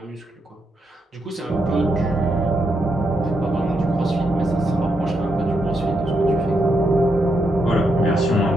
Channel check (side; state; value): both; normal; correlation 0.81